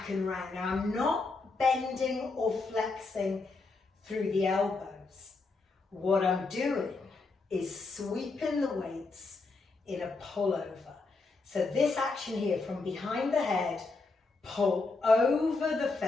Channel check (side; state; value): right; quieter; 3.8 dB